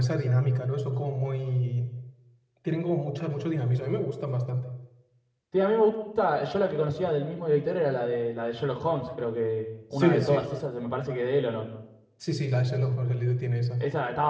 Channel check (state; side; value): identical; both; correlation 1.00